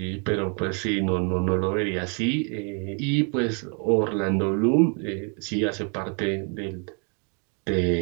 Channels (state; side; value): quieter; left; 37.8 dB